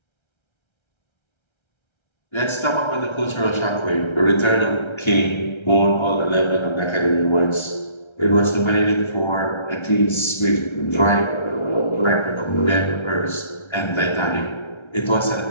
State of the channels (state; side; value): late; right; 1.3 ms